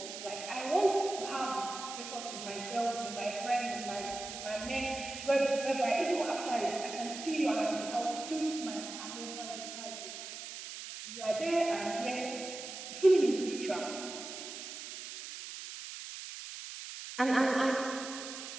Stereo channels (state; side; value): noise; right; hiss, 9 dB below the sound